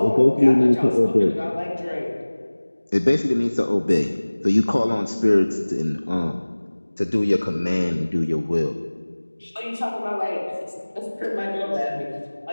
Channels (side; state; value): both; inverted; correlation -1.00